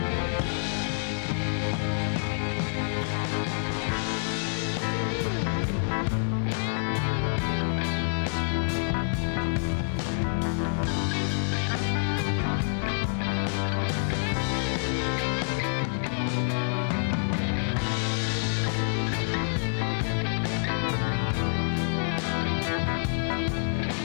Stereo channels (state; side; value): silent; right; digital silence